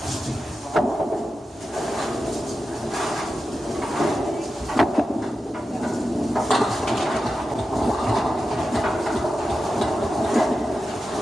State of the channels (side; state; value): both; normal; correlation 0.91